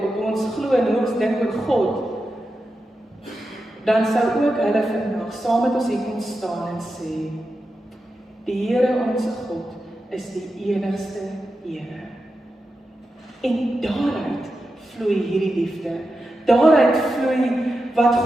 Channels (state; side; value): normal; both; correlation 0.90